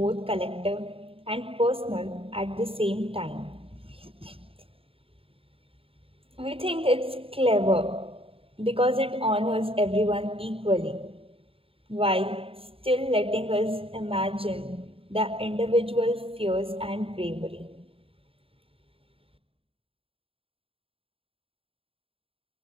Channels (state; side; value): late; left; 0.27 ms